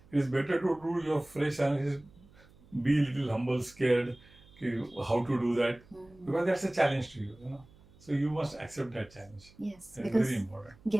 It is better to do your fresh analysis, be a little humble, scared, how to do that, because that's a challenge to you, you know. So you must accept that challenge. Yes, That is because very important.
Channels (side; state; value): right; noise; hum, 26 dB below the sound